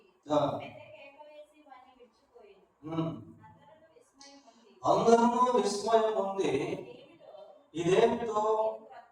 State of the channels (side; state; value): both; identical; correlation 1.00